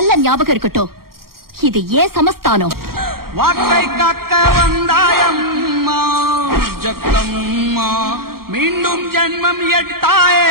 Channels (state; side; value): late; left; 0.93 ms